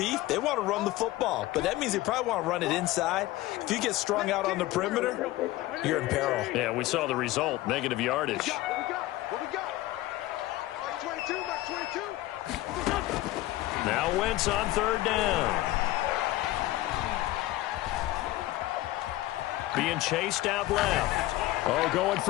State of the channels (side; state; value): right; quieter; 16.8 dB